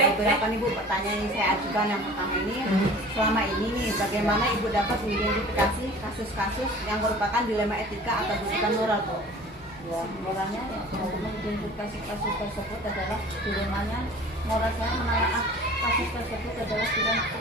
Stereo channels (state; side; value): normal; both; correlation 0.44